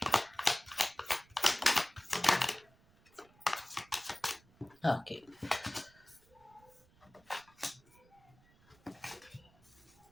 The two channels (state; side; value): noise; right; rumble, 29 dB below the sound